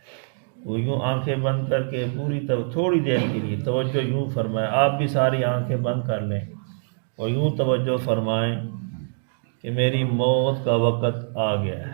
وہ یوں آنکھیں بند کر کے تھوڑی دیر کے لیے توجہ یوں فرمائے، آپ بھی ساری آنکھیں بند کر لیں اور یوں توجہ فرمائیں کہ میری موت کا وقت آ گیا ہے۔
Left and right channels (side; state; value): left; silent; digital silence